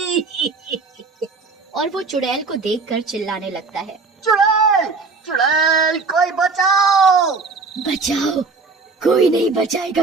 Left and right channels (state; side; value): quieter; left; 4.3 dB